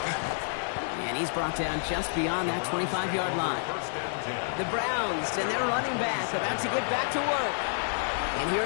And he's brought down just beyond that 25-yard line. The Browns and their running back about to get back to work. And here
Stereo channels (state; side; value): silent; right; digital silence